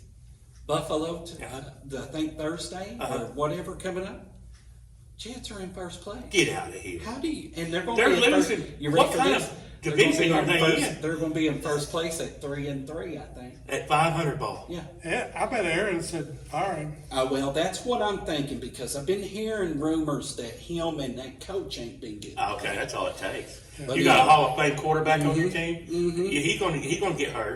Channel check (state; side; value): identical; both; correlation 1.00